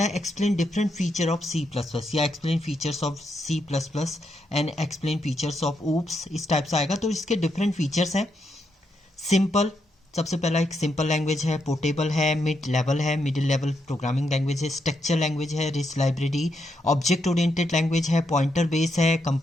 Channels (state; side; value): normal; both; correlation 0.81